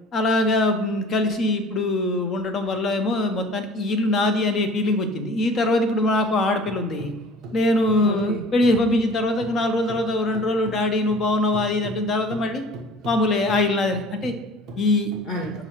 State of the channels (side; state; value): both; normal; correlation 0.46